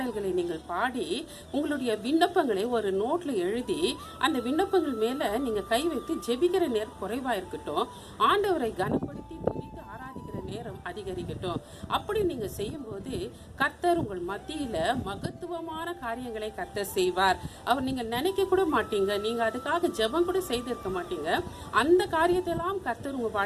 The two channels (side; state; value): both; identical; correlation 1.00